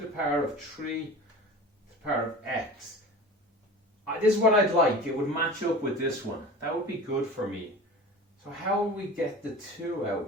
power of 3 to the power of x. This is what I'd like. It would match up with this one. That would be good for me. So how will we get the 2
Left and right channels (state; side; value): normal; both; correlation 0.36